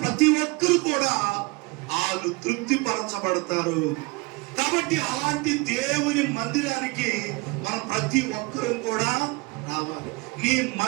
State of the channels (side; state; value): left; quieter; 26.5 dB